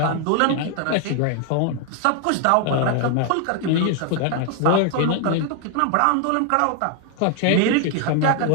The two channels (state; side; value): different; both; correlation 0.00